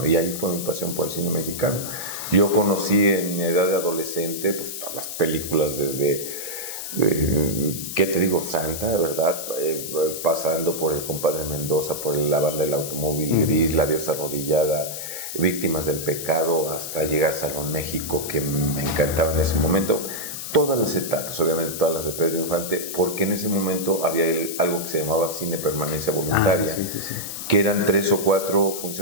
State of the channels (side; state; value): left; noise; hiss, 7 dB below the sound